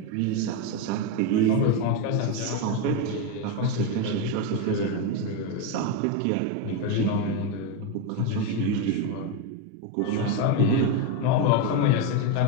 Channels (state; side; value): different; both; correlation 0.03